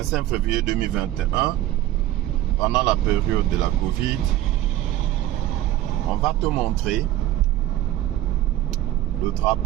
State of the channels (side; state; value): left; quieter; 14.2 dB